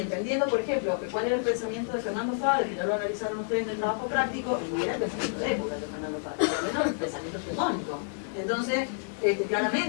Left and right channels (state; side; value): silent; right; digital silence